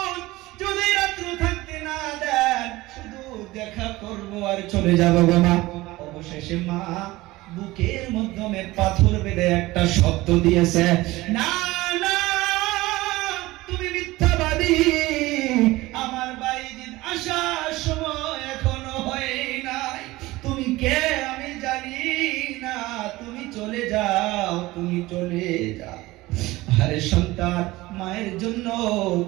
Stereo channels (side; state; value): left; quieter; 19.2 dB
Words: যদি রাত্র থাকতে না দেন শুধু দেখা করব আর চলে যাব গো মা। অবশেষে মা বুকের মাধ্যমে পাথর বেঁধে একটা শব্দ দিয়েছে, না না তুমি মিথ্যাবাদী, আমার বাইজিদ আসার সময় এখনো হয় নাই, তুমি কে আমি জানি না, তুমি চলে যাও, তুমি চলে যাও। আরে সন্তান মায়ের জন্য